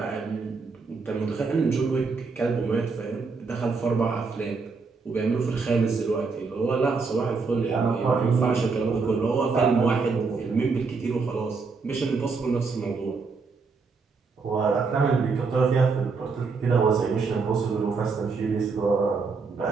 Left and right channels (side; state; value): left; quieter; 4.6 dB